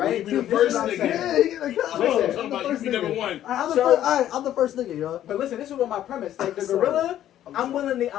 be the This first is what I'm nigga. saying. Yeah, you gotta come Listen, on. I'm talking about you be number one. I'm the first nigga, y'all. But listen, this is what my premise. Like the Sorry. gorilla, I'm I'm willing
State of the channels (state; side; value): quieter; right; 11.9 dB